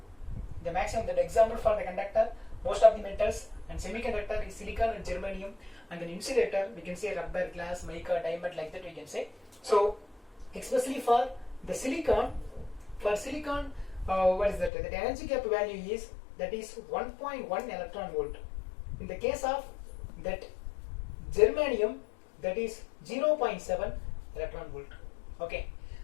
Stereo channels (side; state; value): right; drops out; at 14.7 s